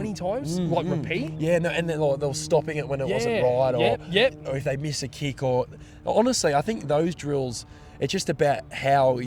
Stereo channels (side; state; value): both; identical; correlation 1.00